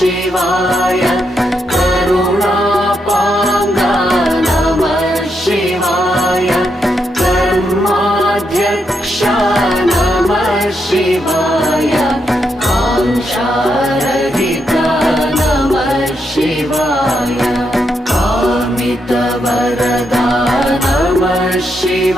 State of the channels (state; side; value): normal; both; correlation 0.81